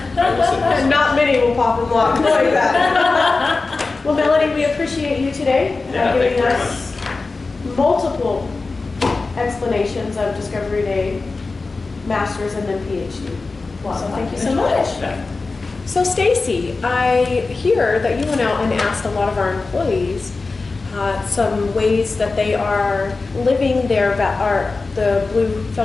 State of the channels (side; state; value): right; quieter; 3.8 dB